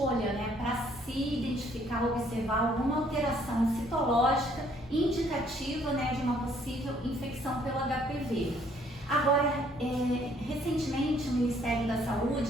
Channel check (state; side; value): normal; both; correlation 0.63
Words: né, para se identificar, observar alguma alteração citológica indicativa, né, de uma possível infecção pelo HPV. Agora, recentemente o Ministério da